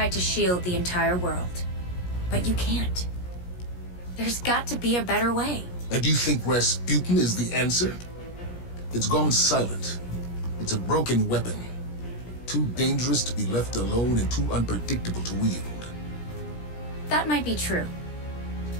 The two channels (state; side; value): late; right; 17 ms